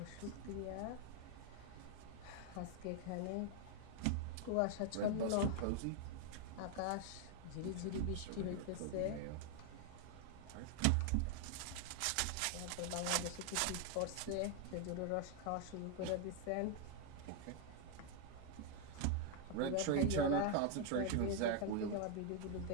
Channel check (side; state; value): both; different; correlation 0.00